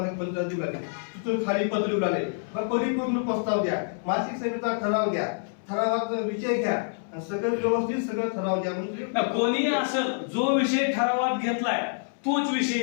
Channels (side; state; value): right; silent; 60 dB below the other